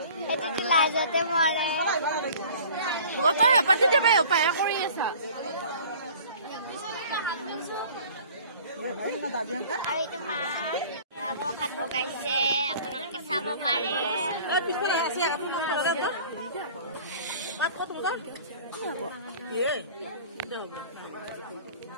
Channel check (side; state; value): both; inverted; correlation -0.46